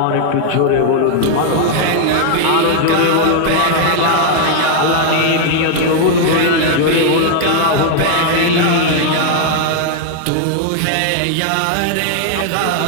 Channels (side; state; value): both; different; correlation 0.00